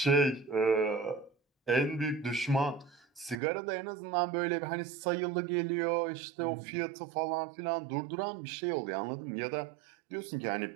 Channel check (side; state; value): left; drops out; at 3.4 s